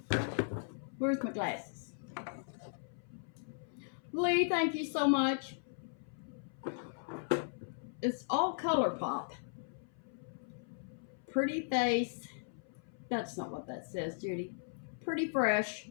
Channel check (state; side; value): silent; right; 53 dB below the other